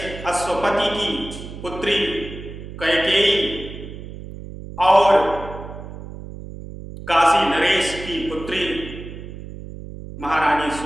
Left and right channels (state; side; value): noise; right; hum, 12 dB below the sound